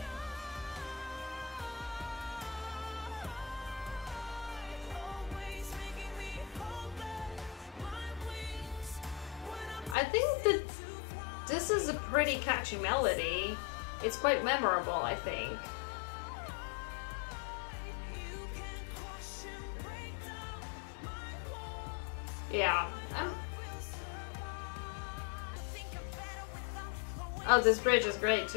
I think that this is a pretty catchy melody. It's quite memorable, I think. Yeah. Oh, this bridge is great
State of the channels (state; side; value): drops out; right; at 10.0 s